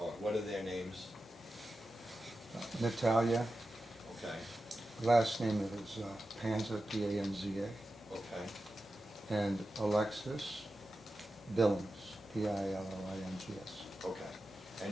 what are their names? Natalia, Okay, last name is Panza, P-A-N-Z-A, okay. and Alexis Billings, P-I-L-L-I-N-G-S. Okay. And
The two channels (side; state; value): both; normal; correlation 0.92